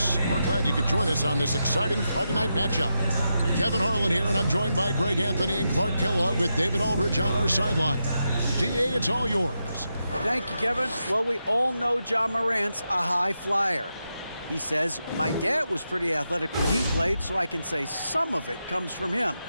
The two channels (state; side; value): inverted; both; correlation -0.87